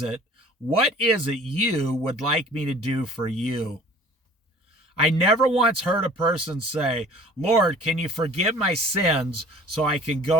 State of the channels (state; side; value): normal; both; correlation 0.48